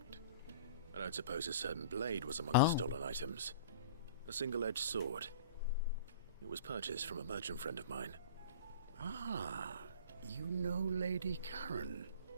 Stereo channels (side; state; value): both; inverted; correlation -0.41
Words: I don't suppose a certain blade was among the stolen items. A single-edged sword. It was purchased from a merchant friend of mine. Ah, you know Lady Karen?